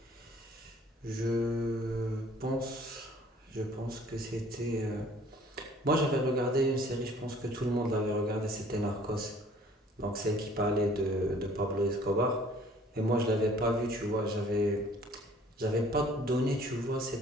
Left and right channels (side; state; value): both; normal; correlation 0.55